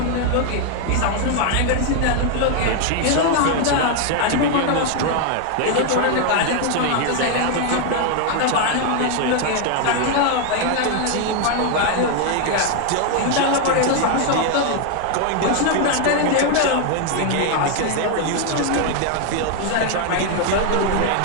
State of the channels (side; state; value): both; different; correlation 0.00